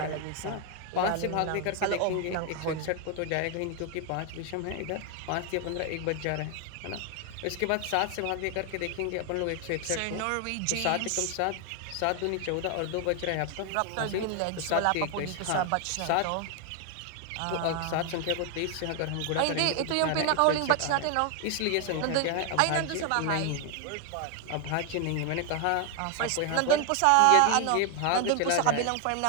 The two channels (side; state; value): both; different; correlation 0.01